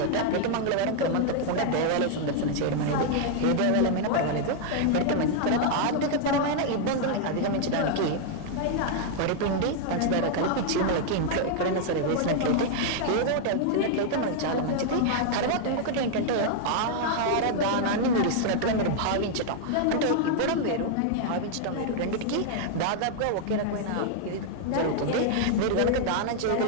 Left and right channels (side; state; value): both; different; correlation 0.00